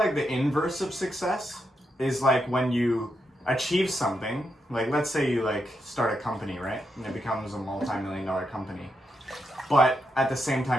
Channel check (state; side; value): normal; both; correlation 0.83